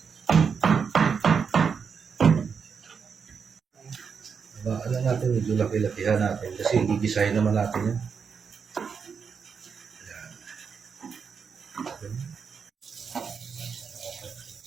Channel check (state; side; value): quieter; left; 6.1 dB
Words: Alam natin, medyo laki-lakihan natin kasi gigisahin naman natin yan.